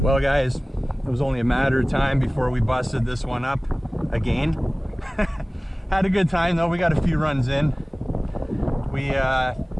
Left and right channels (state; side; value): normal; both; correlation 0.98